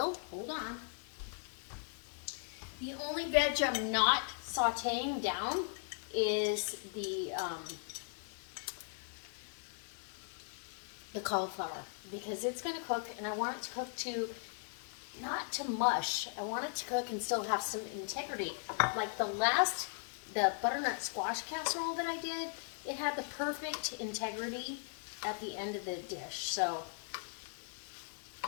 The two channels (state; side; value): silent; right; 52 dB below the other